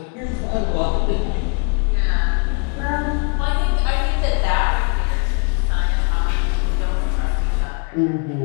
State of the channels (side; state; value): right; quieter; 35.8 dB